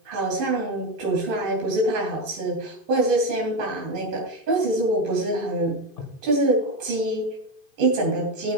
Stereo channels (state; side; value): late; left; 2.5 ms